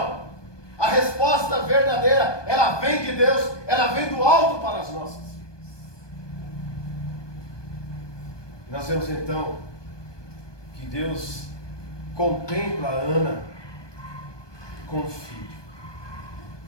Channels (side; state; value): right; late; 1.2 ms